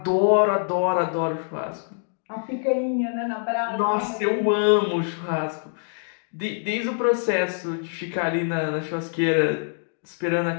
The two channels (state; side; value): silent; right; 62 dB below the other